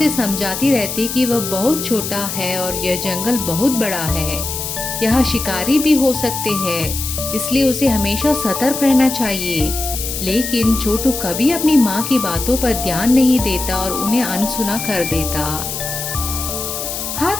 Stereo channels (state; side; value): noise; left; hiss, 5 dB below the sound